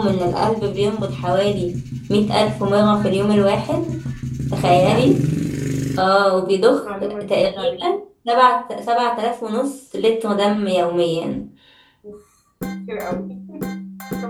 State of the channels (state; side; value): identical; both; correlation 1.00